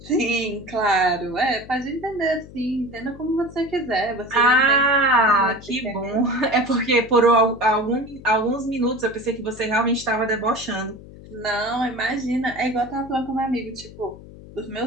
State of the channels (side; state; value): left; noise; hum, 18 dB below the sound